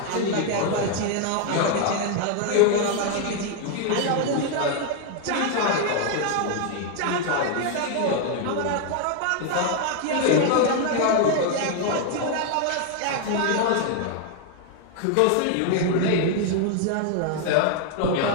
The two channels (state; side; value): different; both; correlation 0.00